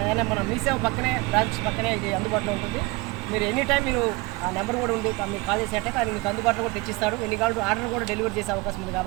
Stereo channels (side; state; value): left; quieter; 23.7 dB